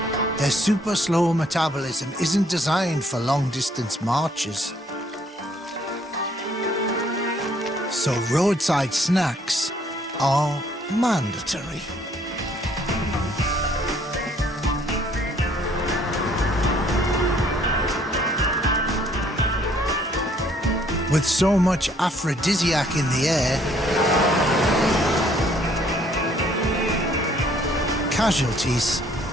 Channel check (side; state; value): both; normal; correlation 0.63